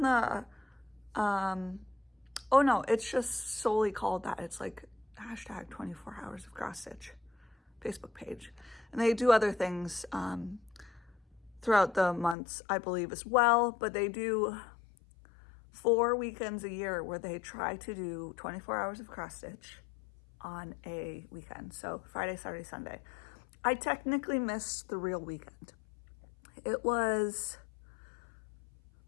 the, oh no, it's just solely called that. It's like hashtag 24 hours of cross stitch Facebook page. And they do other things throughout the months, I believe, as well, but they do 4 weekends a year where they try to do 24 hours of cross stitch on a weekend. So Friday, Saturday, Sunday. I technically missed the real weekend. It was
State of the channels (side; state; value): right; drops out; at 12.4 s